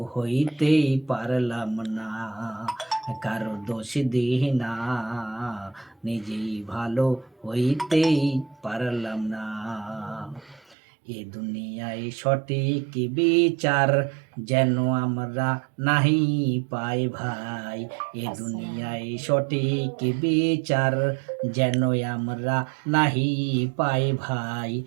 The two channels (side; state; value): left; drops out; at 10.8 s